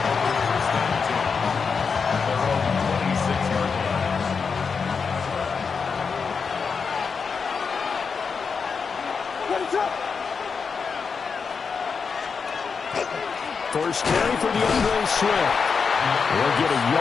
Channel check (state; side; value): quieter; right; 5.5 dB